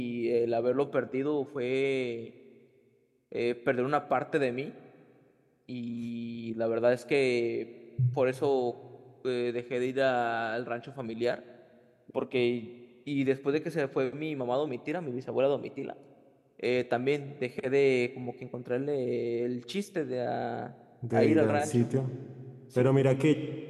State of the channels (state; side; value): identical; both; correlation 1.00